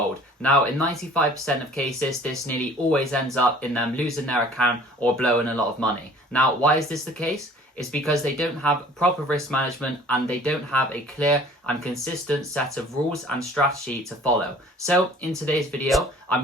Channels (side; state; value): both; normal; correlation 0.50